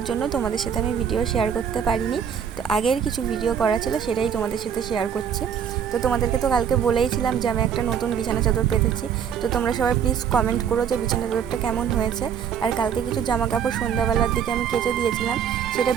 জন্য তোমাদের সাথে আমি ভিডিও শেয়ার করতে পারিনি। তো আগের কিছু ভিডিও করা ছিল সেটাই তোমাদের সাথে শেয়ার করছি। তো তোমাদেরকে তো কালকে বলেইছিলাম যে আমি একটা নতুন বিছানা চাদর পেতেছি। তো তোমরা সবাই প্লিজ কমেন্ট করো যে বিছানা চাদরটা কেমন হয়েছে। আর কালকে কিছু জামা কাপড় সন্ধ্যাবেলার দিকে আমি কেচে দিয়েছিলাম, সেটা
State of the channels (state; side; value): quieter; left; 8.0 dB